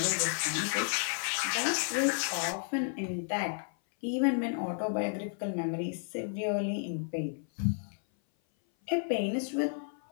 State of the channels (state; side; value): silent; right; 56 dB below the other